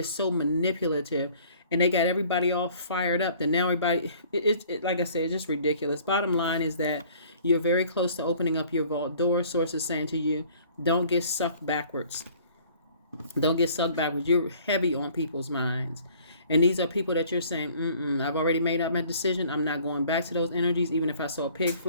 so manipulative, and they got everybody all fired up. Then now everybody, like I said, it's just ridiculous. Bottom line is that you're very close to opening up your vault door. Source is saying to you, don't get sucked backwards. Don't get sucked backwards. You're heavy on people's minds. And these are people that you're saying, I've already made up my decision. I'm not going back to those energies, even if I saw a pig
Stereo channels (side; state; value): both; inverted; correlation -0.54